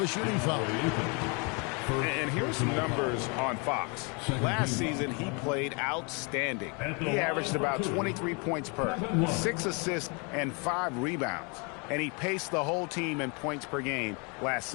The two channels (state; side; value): quieter; right; 32.6 dB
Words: shooting foul. And here's some numbers on Fox. Last season, he played outstanding. He averaged about 23 points per, 6 assists, and 5 rebounds. And he paced the whole team in points per game last